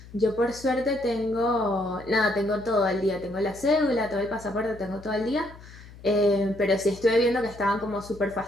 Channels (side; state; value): left; noise; hum, 19 dB below the sound